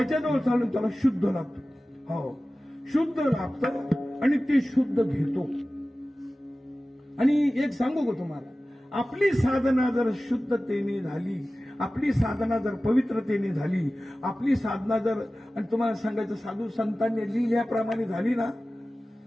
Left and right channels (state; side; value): normal; both; correlation 0.96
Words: चालून त्याला शुद्ध लागतं. हो, शुद्ध लागतं आणि ते शुद्ध घेतो. आणि एक सांगू का तुम्हाला, आपली साधना जर शुद्धतेने झाली, आपली साधना जर पवित्रतेने झाली, आपली साधना जर, आणि तुम्हाला सांगायचं साधू संतांनी लिहिल्याप्रमाणे झाली ना,